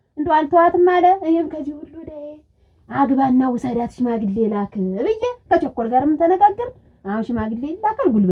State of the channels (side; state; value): both; identical; correlation 1.00